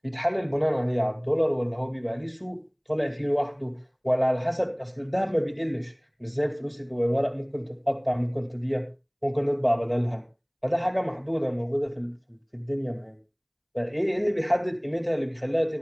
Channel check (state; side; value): identical; both; correlation 1.00